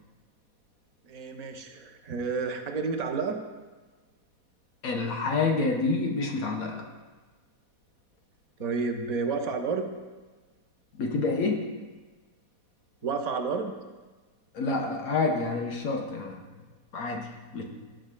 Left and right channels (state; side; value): late; right; 4.2 ms